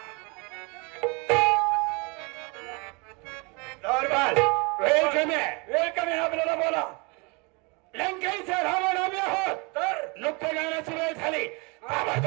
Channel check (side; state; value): left; quieter; 30.0 dB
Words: दरबार वेळ कमी आहे. वेळ कमी आहे आपल्याला बोला. लंकेचा रावण आम्ही आहोत. तर नृत्य गाण्याची वेळ झाली.